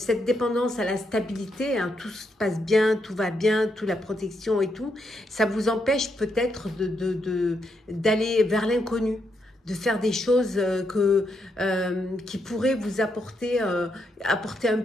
dépendance à la stabilité, hein, tout se passe bien, tout va bien, toute la protection et tout, ça vous empêche peut-être d'aller vers l'inconnu, de faire des choses qui pourraient vous apporter un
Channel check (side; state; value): both; normal; correlation 0.80